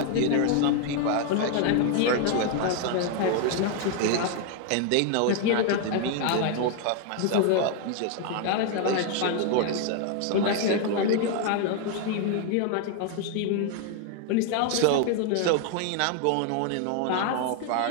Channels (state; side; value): different; both; correlation 0.00